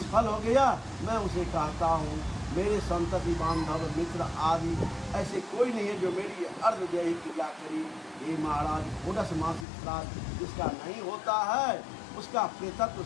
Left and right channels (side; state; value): right; drops out; at 9.7 s